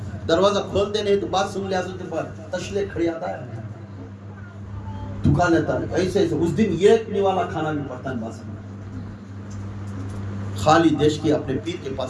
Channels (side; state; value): both; identical; correlation 1.00